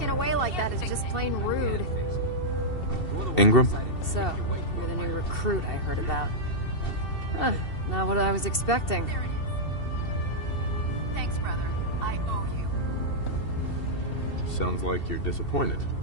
away like that is just plain rude. Ingram? So, you're the new recruit I heard about. Huh, not what I was expecting. There it is. Thanks, brother. I owe you. Sounds like you're disappointed.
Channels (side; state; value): right; late; 2.7 ms